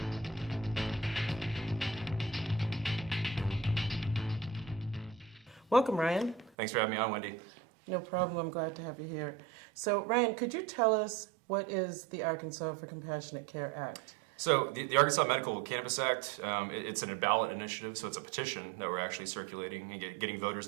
Welcome, Ryan. Thanks for having me on, Wendy. No problem. I'm glad to have you here. So, Ryan, could you tell us what is the Arkansas for Compassionate Care Act? So the Arkansas Medical Cannabis Act, it's a ballot initiative, so it's a petition that we're actually circulating and getting voters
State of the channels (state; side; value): drops out; left; at 6.5 s